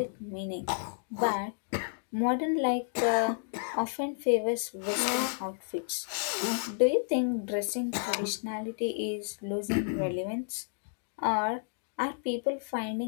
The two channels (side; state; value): right; silent; digital silence